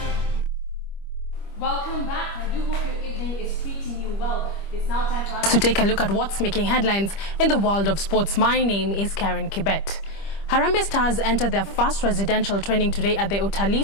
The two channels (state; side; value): late; right; 25 ms